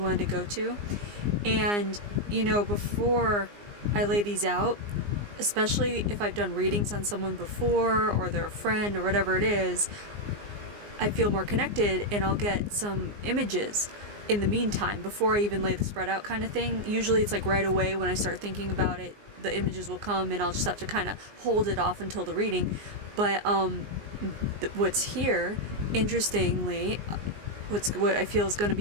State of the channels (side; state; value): left; late; 19 ms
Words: to go to. And, before I lay these out, especially if I've done readings on someone before or they're a friend or whatever it is, I feel more connected and I'll get some images in the meantime before I even lay the spread out kind of thing. Usually it's like right away when I start thinking about it, the images will come and I'll just have to kind of hold it off until the reading. But what's here, interestingly, what I feel is going to